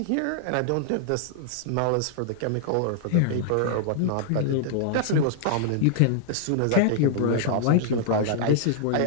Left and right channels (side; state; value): both; different; correlation -0.01